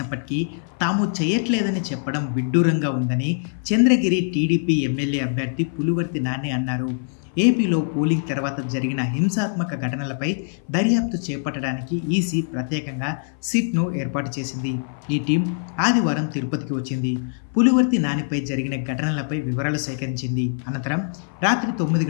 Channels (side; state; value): right; silent; 56 dB below the other